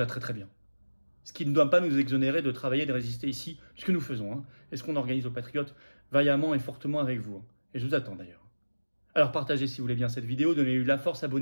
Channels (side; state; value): both; inverted; correlation -1.00